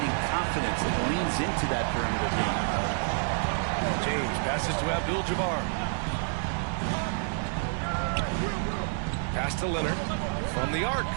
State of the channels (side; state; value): left; silent; 59 dB below the other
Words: confidence and leans into that perimeter game. James passes to Abdul-Jabbar. Pass to Leonard from the arc.